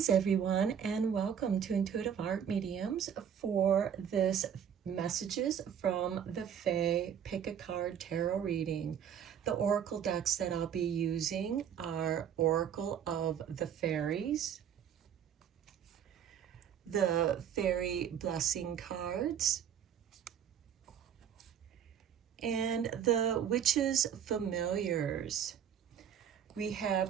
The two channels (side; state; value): left; quieter; 8.7 dB